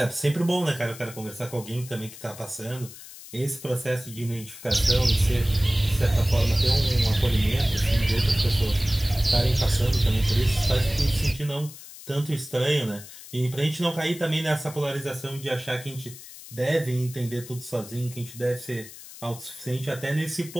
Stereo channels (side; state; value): left; noise; hiss, 16 dB below the sound